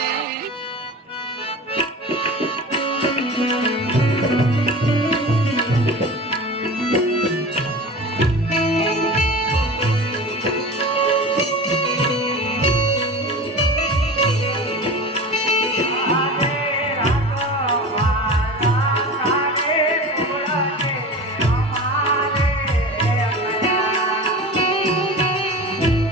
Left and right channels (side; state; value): both; normal; correlation 0.34